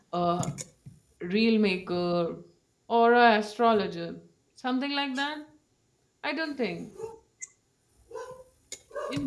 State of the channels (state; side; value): identical; both; correlation 1.00